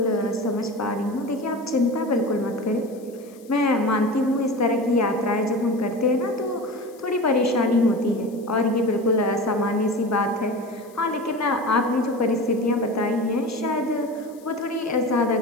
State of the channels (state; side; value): noise; left; hiss, 27 dB below the sound